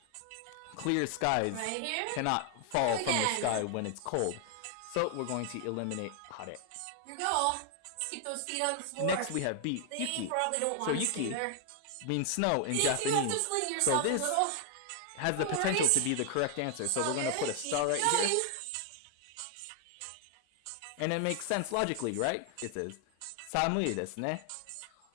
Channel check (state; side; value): different; both; correlation 0.00